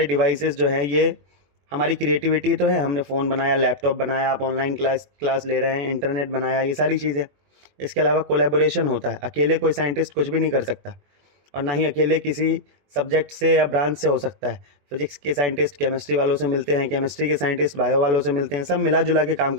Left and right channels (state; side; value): late; left; 21 ms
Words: डिवाइसेस जो हैं ये हमारी क्रिएटिविटी तो है। हमने फ़ोन बनाया, लैपटॉप बनाया, आप ऑनलाइन क्लास ले रहे हैं, इंटरनेट बनाया, ये सारी चीज़ें। इसके अलावा कोलैबोरेशन होता है, अकेले कोई साइंटिस्ट कुछ भी नहीं कर सकता और ना ही अकेले किसी सब्जेक्ट से या ब्रांच से हो सकता है। फिजिक्स के साइंटिस्ट केमिस्ट्री वालों से मिलते हैं, केमिस्ट्री के साइंटिस्ट बायो वालों से मिलते हैं, सब मिला जुला के काम